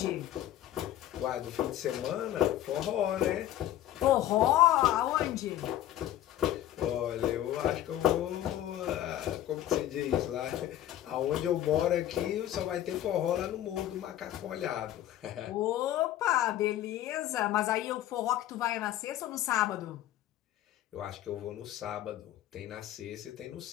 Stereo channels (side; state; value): right; quieter; 12.9 dB